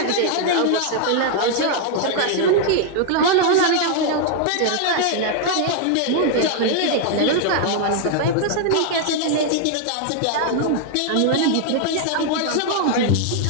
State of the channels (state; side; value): different; both; correlation 0.00